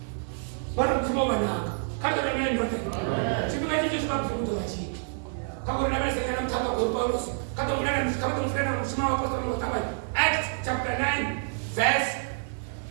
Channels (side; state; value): left; silent; digital silence